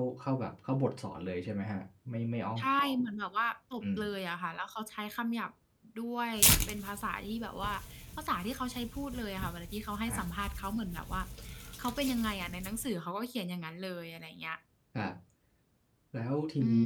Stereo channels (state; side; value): identical; both; correlation 1.00